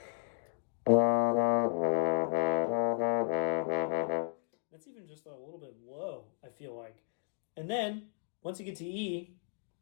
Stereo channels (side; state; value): right; silent; digital silence